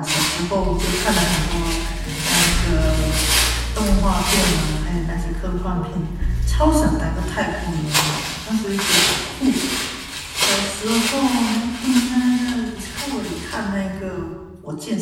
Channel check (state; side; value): identical; both; correlation 1.00